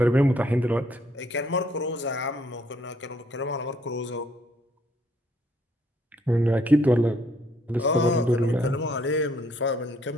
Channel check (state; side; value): normal; both; correlation 0.67